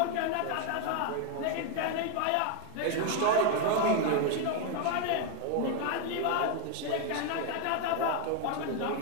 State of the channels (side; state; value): both; different; correlation 0.01